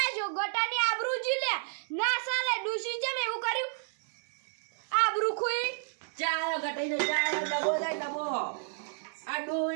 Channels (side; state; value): left; silent; digital silence